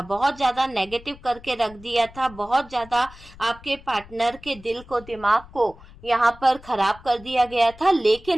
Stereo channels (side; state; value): left; noise; rumble, 21 dB below the sound